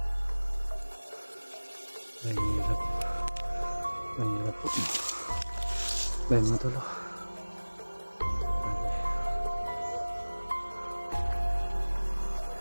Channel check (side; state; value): both; inverted; correlation -1.00